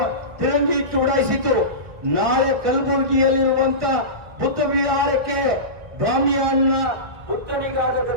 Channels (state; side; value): late; left; 1.7 ms